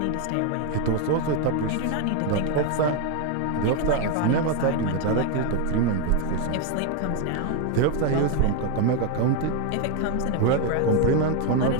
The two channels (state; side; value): different; both; correlation 0.01